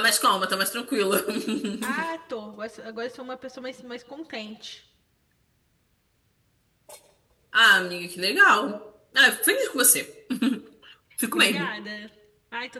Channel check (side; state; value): both; identical; correlation 1.00